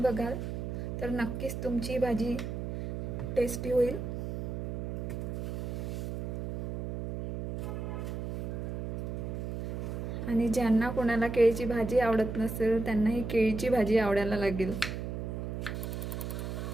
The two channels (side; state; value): right; noise; hum, 4 dB below the sound